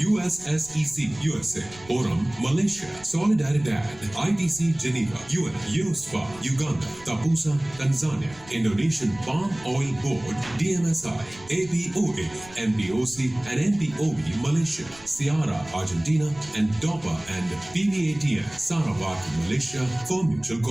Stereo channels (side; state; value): right; noise; rumble, 21 dB below the sound